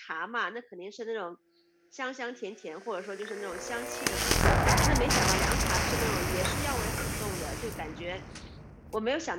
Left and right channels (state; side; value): identical; both; correlation 1.00